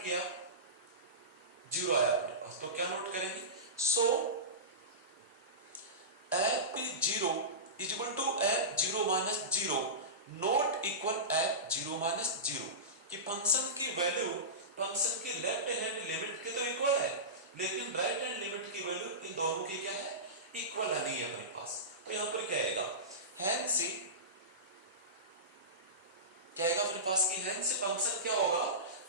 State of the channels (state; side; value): normal; both; correlation -0.19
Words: किया 0 आया अपने पास, तो क्या नोट करेंगे, so f 0 equal to f 0 minus 0 not equal f 0 minus 0, कि फंक्शन की वैल्यू फंक्शन की लेफ्ट हैंड लिमिट के तो इक्वल है, लेकिन राइट हैंड लिमिट की वैल्यू इन दोनों की क्या है इक्वल नहीं है अपने पास, तो यहां पर क्या आएगा हैंस क्या आएगा अपने पास की हैंस फंक्शन क्या होगा